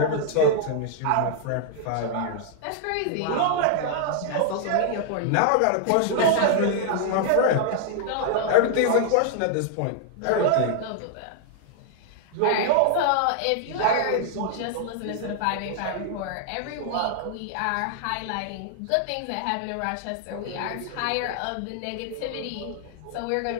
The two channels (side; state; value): both; different; correlation 0.00